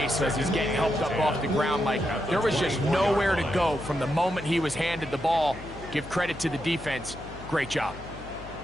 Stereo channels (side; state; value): left; noise; hum, 15 dB below the sound